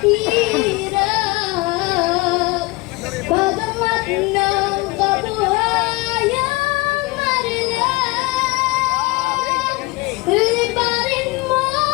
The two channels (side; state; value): right; quieter; 22.9 dB